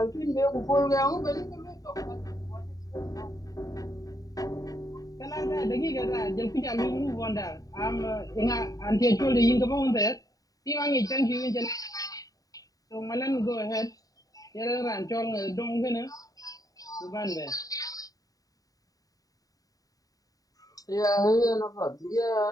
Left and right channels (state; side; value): late; right; 0.18 ms